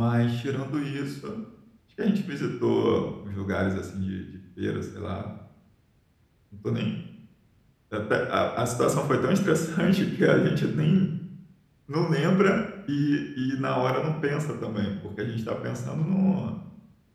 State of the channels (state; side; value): identical; both; correlation 1.00